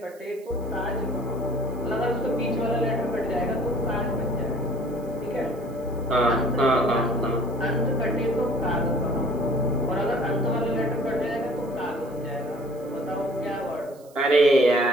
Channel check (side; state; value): right; noise; hiss, 27 dB below the sound